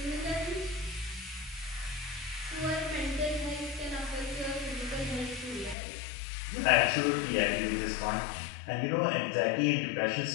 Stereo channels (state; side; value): drops out; right; at 5.8 s